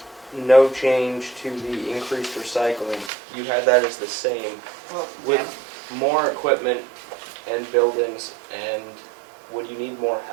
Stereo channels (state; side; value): drops out; left; at 3.1 s